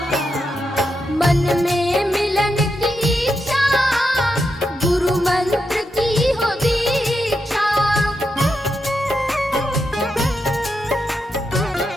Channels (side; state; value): both; normal; correlation 0.85